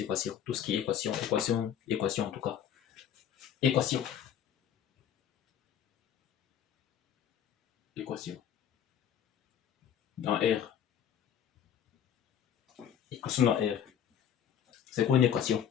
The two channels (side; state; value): right; quieter; 9.2 dB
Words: équations. Tout ce qui est équation en tout cas. Équation. Dans R. Équation dans R. C'est quoi une équation?